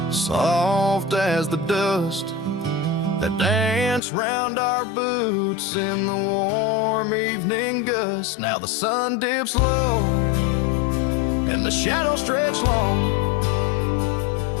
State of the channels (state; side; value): drops out; right; at 4.0 s